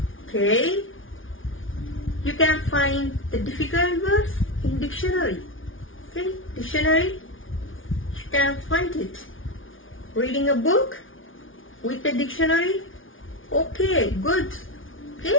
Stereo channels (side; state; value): right; late; 0.57 ms